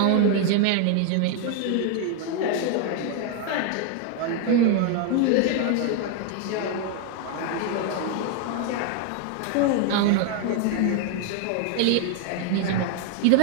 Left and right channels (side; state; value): both; different; correlation 0.01